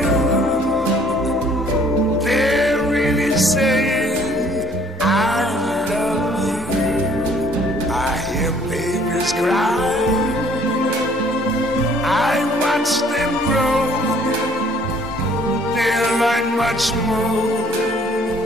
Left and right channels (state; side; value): normal; both; correlation 0.59